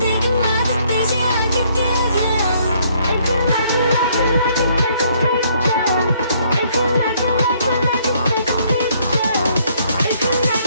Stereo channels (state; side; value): inverted; both; correlation -0.67